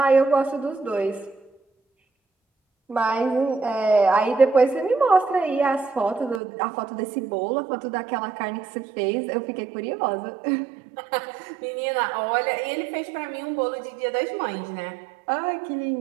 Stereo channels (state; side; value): drops out; left; at 6.4 s